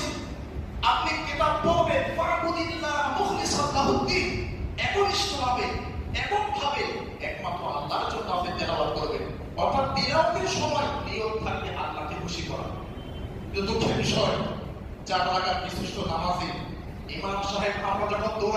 আপনি কিতাব পড়বেন, ফা'বুদিল্লাহা মুখলিসান লাহুদ-দীন, একনিষ্ঠভাবে, এককভাবে একমাত্র আল্লাহর জন্য আপনি তেলাওয়াত করবেন। অর্থাৎ তেলাওয়াতের সময় নিয়ত থাকবে আল্লাহকে খুশি করা। কিন্তু দুঃখের বিষয়, 4 রাকাত বিশিষ্ট নামাজে ইমাম সাহেব, আমরা যখন 2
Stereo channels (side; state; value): both; identical; correlation 1.00